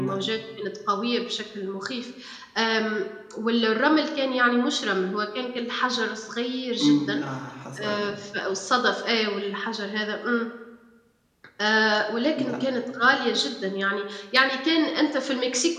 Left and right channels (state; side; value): identical; both; correlation 1.00